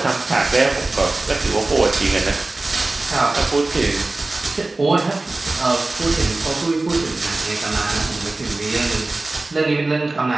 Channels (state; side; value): quieter; left; 3.1 dB